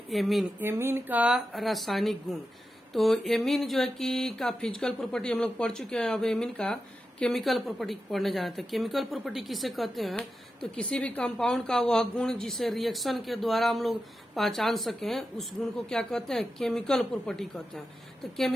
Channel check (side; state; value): both; normal; correlation 0.90